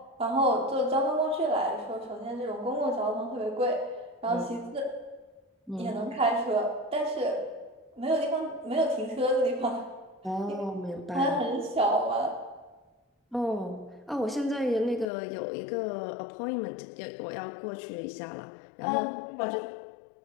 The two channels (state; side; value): drops out; right; at 15.1 s